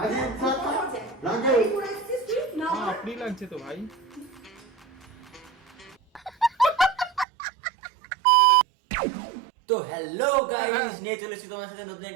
লাগে এই করে আসছিস তুই না আপনি লাগছে তো ভাই। তো হ্যালো গাইস, নিয়ে চলে এসেছি তোমার সাথে নতুন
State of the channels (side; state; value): left; drops out; at 7.2 s